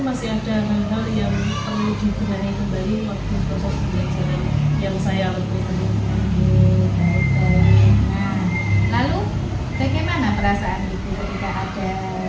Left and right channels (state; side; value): identical; both; correlation 1.00